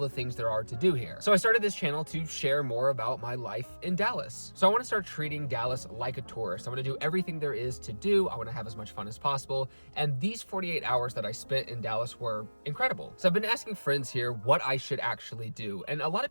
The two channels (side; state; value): both; inverted; correlation -1.00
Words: things there are to do here. So I started this channel to share more about my life in Dallas. So I want to start treating Dallas like a tourist. I want to do everything there is to do. I want to have as much fun as possible, and these 48 hours that I spent in Dallas were incredible. So I've been asking friends here what I should actually do, and a lot